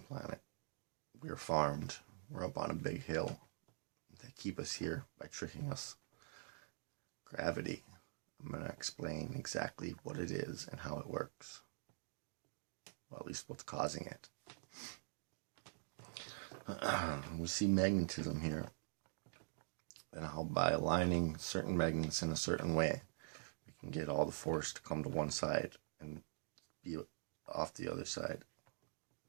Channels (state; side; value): silent; left; digital silence